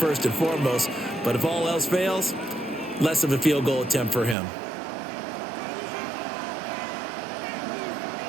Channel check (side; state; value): left; drops out; at 4.4 s